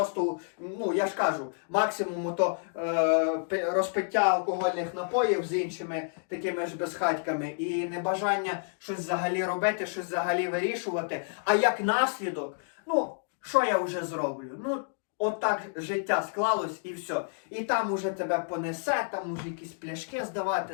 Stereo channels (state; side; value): silent; right; digital silence